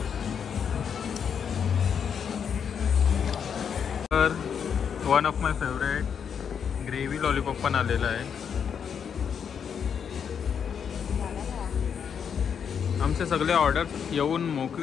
तर one of my favourite gravy lollipop पण आलेला आहे. आमचे सगळे ऑर्डर येऊन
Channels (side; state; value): right; quieter; 7.4 dB